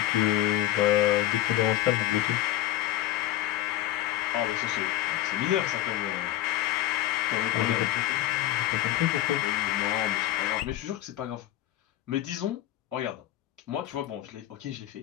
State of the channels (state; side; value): quieter; right; 13.9 dB